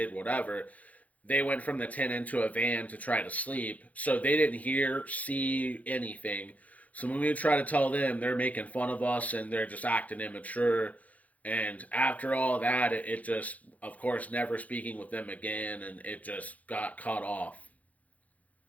whatever, they went from the tent into a van to try to sleep. So they didn't hear, see anything. So when we try to tell them, they're making fun of us and they're just acting immature. And after all that, it just, of course, never speaking with them again, and it just got cut off.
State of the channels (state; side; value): late; right; 0.072 ms